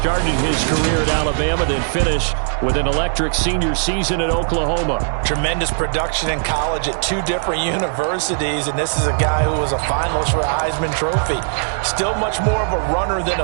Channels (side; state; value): left; silent; digital silence